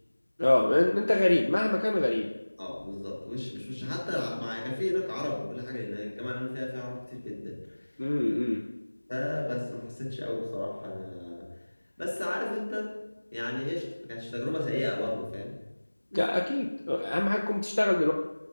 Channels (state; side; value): inverted; both; correlation -1.00